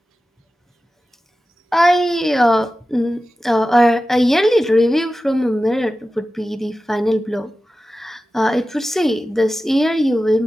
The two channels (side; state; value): both; normal; correlation 0.94